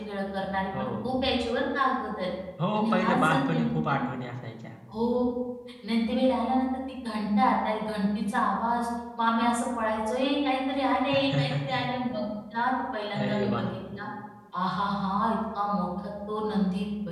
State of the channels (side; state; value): both; identical; correlation 1.00